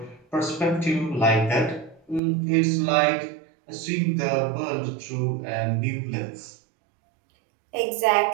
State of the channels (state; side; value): drops out; left; at 2.2 s